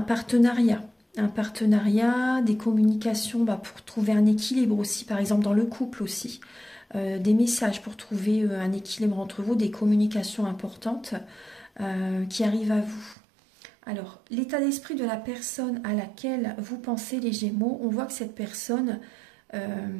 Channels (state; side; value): drops out; left; at 13.2 s